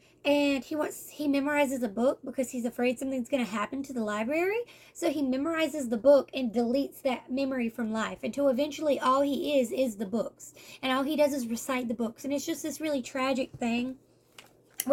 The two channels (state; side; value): identical; both; correlation 1.00